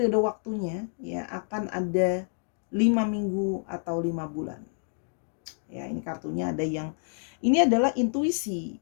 waktunya ya, akan ada 5 minggu atau 5 bulan. Ya, ini kartunya ada yang ini adalah intuisi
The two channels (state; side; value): silent; right; 57 dB below the other